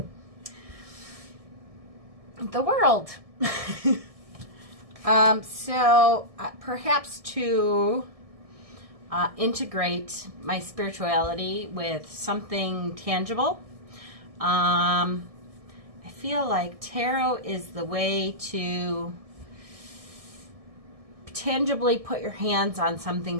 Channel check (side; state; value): left; late; 1.6 ms